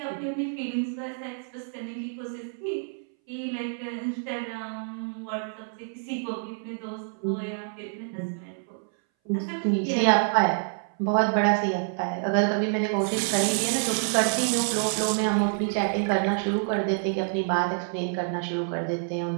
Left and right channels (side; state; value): left; silent; 59 dB below the other